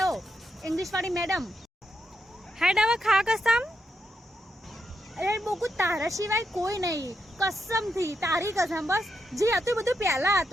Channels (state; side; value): normal; both; correlation 0.82